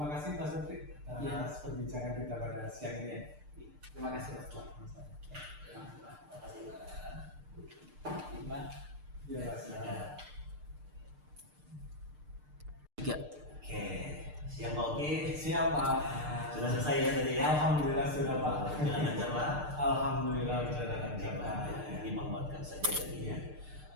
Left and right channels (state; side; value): late; left; 6.7 ms